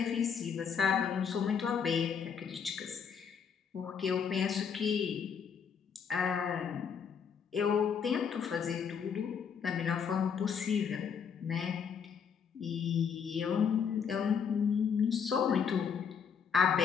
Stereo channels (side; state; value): right; quieter; 6.9 dB